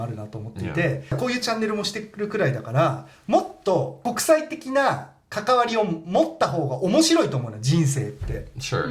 あるなと思っていて、こういうチャンネルもしてるくらいだからもっと国際的な関わりを持った方が面白いと思うの人生って、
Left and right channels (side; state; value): both; identical; correlation 1.00